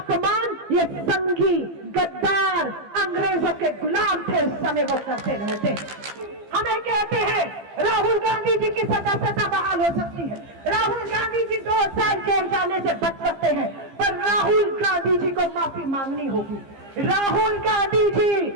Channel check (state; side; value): late; left; 15 ms